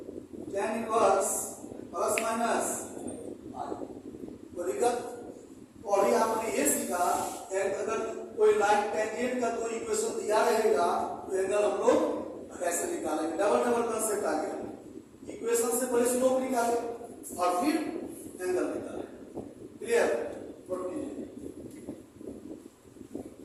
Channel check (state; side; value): identical; both; correlation 1.00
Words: tan inverse plus minus 5। तो दिक्कत और ही आपने ये सीखा, अगर कोई लाइन टेंजेंट का कोई इक्वेशन दिया रहेगा तो एंगल हम लोग कैसे निकालेंगे? डबल कंसेप्ट आ गया। इक्वेशन से पहले स्लोप निकाले और फिर एंगल निकाले। क्लियर? नोट कीजिए।